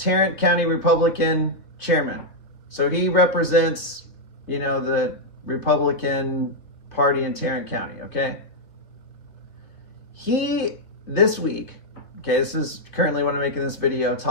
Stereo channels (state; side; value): late; right; 2.7 ms